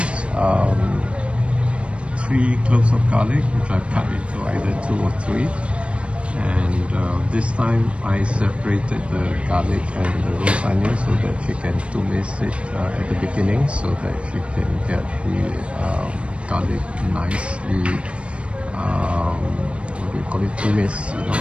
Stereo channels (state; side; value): late; left; 0.060 ms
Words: 3 cloves of garlic, which I've cut into either 2 or 3. And this time I separated the garlic and the roast onion so that she can tumis it at the beginning, so that she can get the garlic nicely, what do you call it, tumis, so